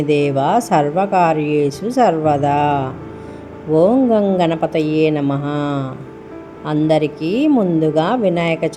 దేవ సర్వకార్యేషు సర్వదా. ఓం గం గణపతయే నమః. అందరికీ ముందుగా వినాయక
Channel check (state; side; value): identical; both; correlation 1.00